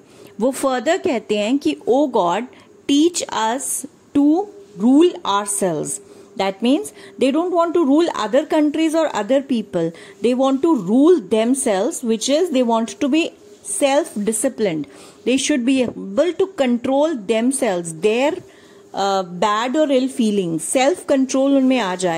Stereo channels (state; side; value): identical; both; correlation 1.00